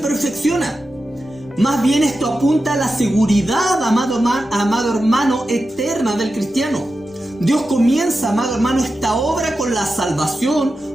Más bien esto apunta a la seguridad, amado hermano, eterna del cristiano. Dios comienza, amado hermano, esta obra con la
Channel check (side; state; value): both; normal; correlation 0.91